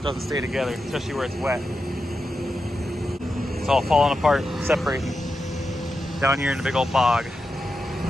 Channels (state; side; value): normal; both; correlation 0.89